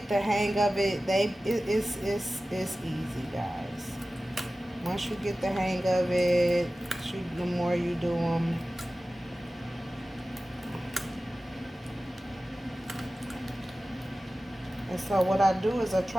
the hang of it, it's easy, guys. Once you get the hang of it, the more you do them, and so what I do is I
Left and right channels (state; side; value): normal; both; correlation 0.96